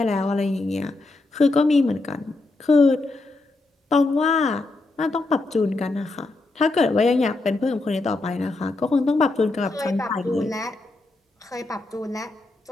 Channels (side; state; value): right; quieter; 3.2 dB